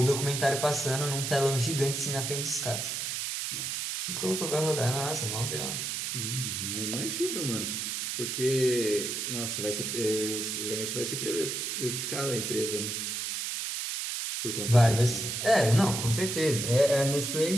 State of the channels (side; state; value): right; noise; hiss, 3 dB below the sound